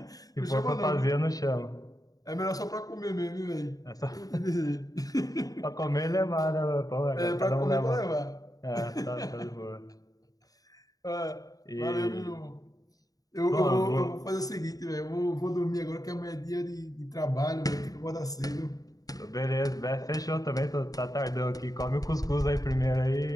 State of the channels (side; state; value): right; late; 0.18 ms